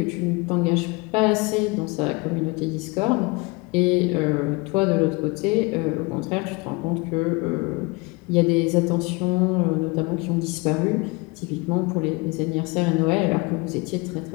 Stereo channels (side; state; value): right; quieter; 26.6 dB